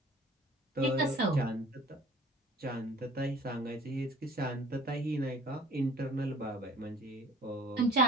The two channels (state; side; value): normal; both; correlation 0.47